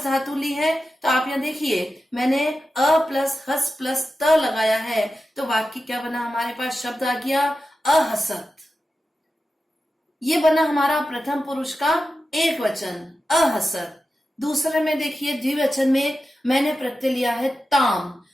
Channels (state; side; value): normal; both; correlation 0.92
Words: धातु ली है तो आप यहाँ देखिए मैंने अ प्लस हस प्लस त लगाया है तो वाक्य क्या बना, हमारे पास शब्द आ गया अहसत। ये बना हमारा प्रथम पुरुष का एक वचन अहसत। दूसरे में देखिए द्विवचन में मैंने प्रत्यय लिया है ताम।